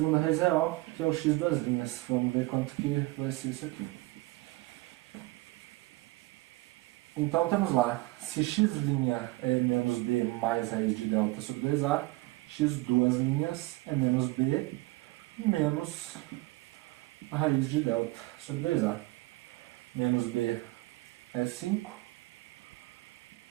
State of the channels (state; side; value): quieter; left; 20.7 dB